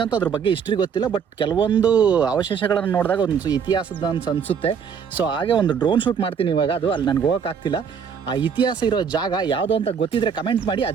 ಅದ್ರ ಬಗ್ಗೆ ಹಿಸ್ಟ್ರಿ ಗೊತ್ತಿಲ್ಲ, ಬಟ್ ಕೆಲವೊಂದು ಅವಶೇಷಗಳನ್ನು ನೋಡಿದಾಗ ಒಂದು ಇತಿಹಾಸದ ಅಂತ ಅನಿಸುತ್ತೆ. ಸೊ ಹಾಗೆ ಒಂದು ಡ್ರೋನ್ ಶೂಟ್ ಮಾಡ್ತೀನಿ ಇವಾಗ. ಅದು ಅಲ್ಲಿ ನನಗೆ ಹೋಗೋಕ್ಕಾಗ್ತಿಲ್ಲ. ಆ ಇತಿಹಾಸ ಇರೋ ಜಾಗ ಯಾವುದು ಅಂತ ಗೊತ್ತಿದ್ರೆ ಕಮೆಂಟ್ ಮಾಡಿ.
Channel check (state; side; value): quieter; left; 6.9 dB